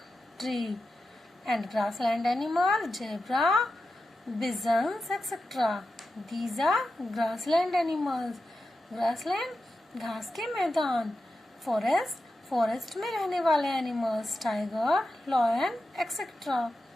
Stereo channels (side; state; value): both; normal; correlation 0.91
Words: tree. And grassland animal, zebra, bisons, etc. These are grassland animals. Grassland घास के मैदान. Forest में रहने वाले animals, tiger, lion, etc.